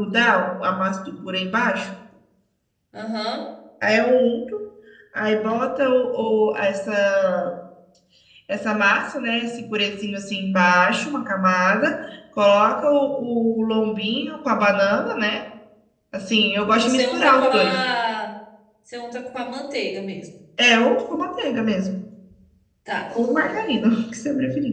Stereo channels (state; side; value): identical; both; correlation 1.00